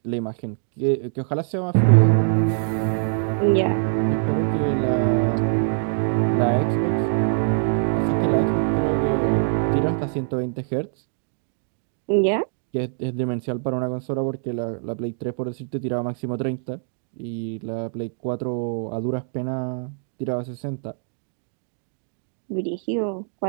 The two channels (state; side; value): silent; left; digital silence